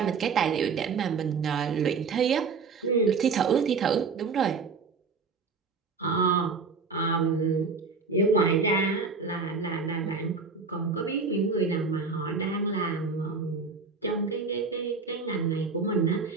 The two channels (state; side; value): quieter; left; 4.8 dB